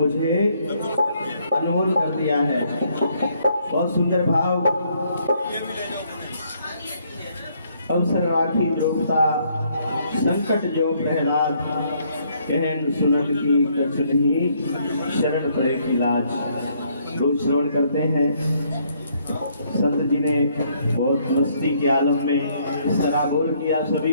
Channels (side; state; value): both; inverted; correlation -0.69